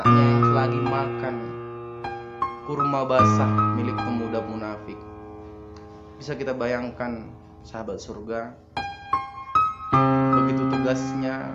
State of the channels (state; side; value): identical; both; correlation 1.00